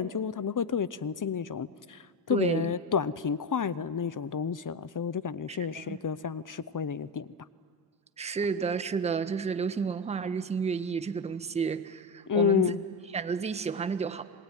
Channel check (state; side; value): normal; both; correlation 0.16